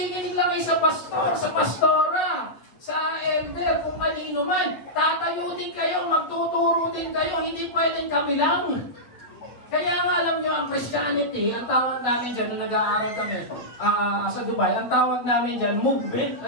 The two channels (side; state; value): right; late; 8.5 ms